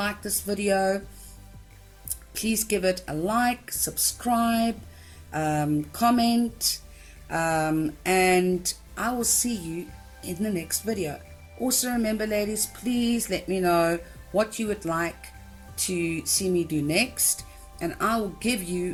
this video. Please give it a like, subscribe, comment, and I will see you in the next video. Also remember, ladies, please let me know what you would like to see me do next, and I will give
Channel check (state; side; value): identical; both; correlation 1.00